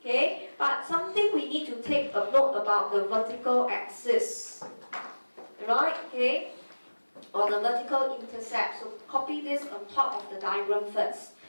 but something we need to take a note about the vertical axis. Right, okay, or the vertical intercept. So copy this on top of the diagram first.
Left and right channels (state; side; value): inverted; both; correlation -1.00